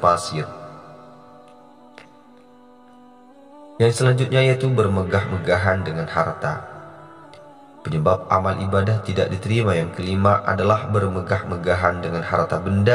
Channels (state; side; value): identical; both; correlation 1.00